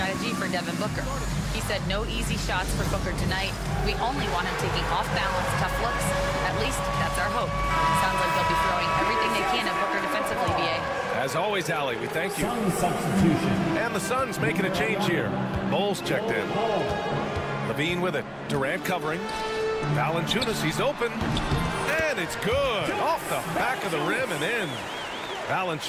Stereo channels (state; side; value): identical; both; correlation 1.00